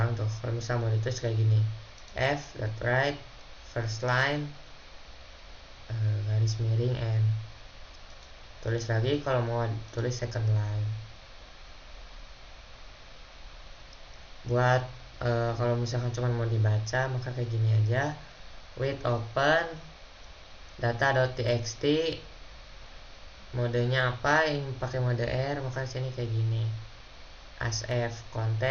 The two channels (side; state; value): both; identical; correlation 1.00